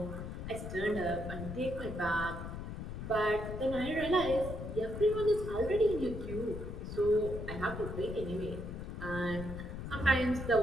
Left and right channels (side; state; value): left; noise; rumble, 7 dB below the sound